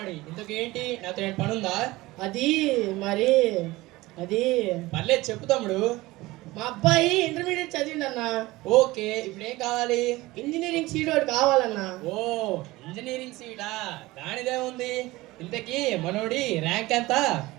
ఇంతకేంటి, నాతో ఏం పని ఉందా? అది మరి అది పర్లేదు చెప్పు తమ్ముడు. మా అబ్బాయి ఇంటర్మీడియట్ చదివిండన్నా. ఓకే, ఇప్పుడు ఏం కావాలి? ఇంజనీరింగ్ సీట్ ఒకటి కావాలన్నా. ఓ ఇంజనీరింగ్ సీటా, దానిదే ఉంది. ఇంతకీ మనోడి ర్యాంక్ ఎంత?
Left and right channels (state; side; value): quieter; left; 19.7 dB